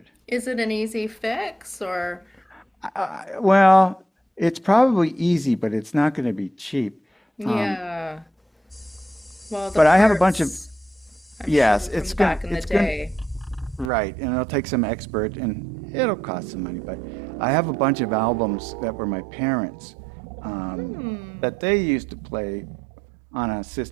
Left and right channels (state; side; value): drops out; left; at 13.9 s